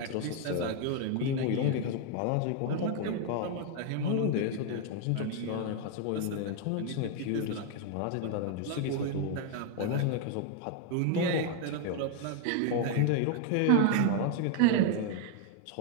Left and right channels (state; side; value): different; both; correlation 0.00